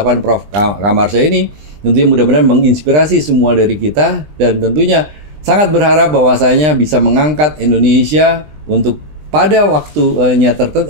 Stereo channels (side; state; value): left; late; 20 ms